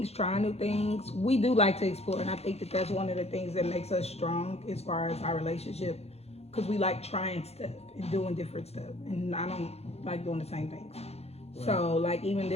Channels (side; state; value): right; late; 0.30 ms